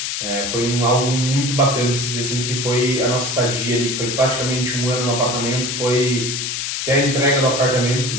Foi algo muito bacana de se dizer, assim, que foi a nossa estadia ali, que foi praticamente 1 ano no apartamento, foi até a entrega do apartamento, que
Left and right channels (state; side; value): noise; left; hiss, 3 dB below the sound